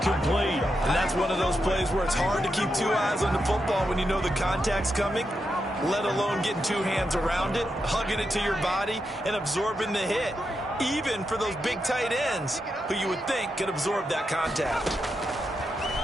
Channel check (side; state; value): both; normal; correlation 0.85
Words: And that's one of those plays where it's hard to keep 2 eyes on the football when you know the contact's coming. let alone getting two hands around it, hugging it to your body, and absorbing the hit, even for those big tight ends who you would think could absorb that contact.